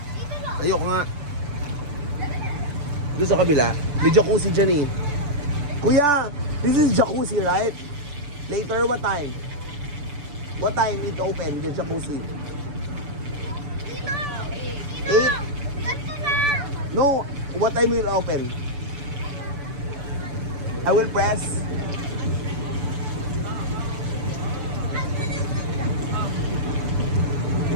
Ayoko nga. Doon sa kabila. May jacuzzi dyan eh. Kuya, this is jacuzzi right? Later what time? What time it open, the jacuzzi? 8? No, what time will open? I will press.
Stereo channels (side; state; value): left; late; 6.9 ms